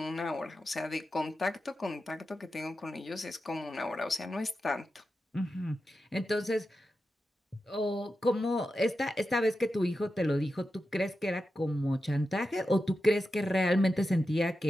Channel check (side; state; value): both; normal; correlation 0.90